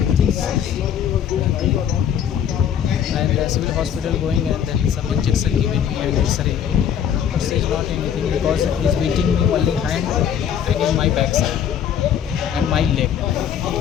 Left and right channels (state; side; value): quieter; right; 9.0 dB